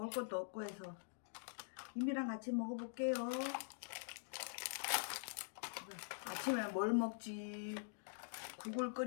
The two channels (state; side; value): silent; right; digital silence